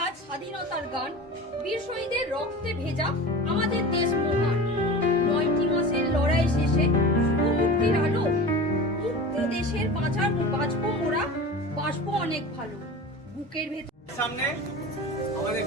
স্বাধীনতার গান, বীর শহীদের রক্তে ভেজা আমাদের দেশ মহান। ৯টি মাসের লড়াই শেষে মুক্তির আলো, মুক্তি দেশের বাঁচবো মোরা, বাঁচবো অনেক ভালো। বুকের ভেতর সামনে আমাদের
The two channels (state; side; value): normal; both; correlation 0.33